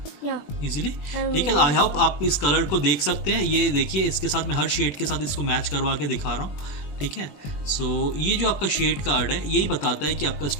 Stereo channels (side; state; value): right; late; 21 ms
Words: इजीली? ठीक है, आई होप आप इस कलर को देख सकते हैं। ये देखिए, इसके साथ मैं हर शेड के साथ इसको मैच करवा के दिखा रहा हूँ। ठीक है, सो ये जो आपका शेड कार्ड है, यही बताता है कि आपका